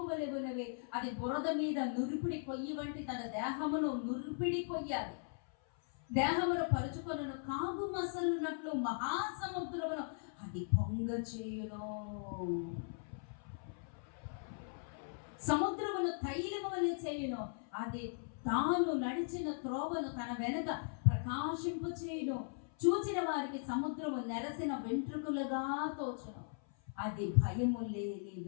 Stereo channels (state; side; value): silent; right; 52 dB below the other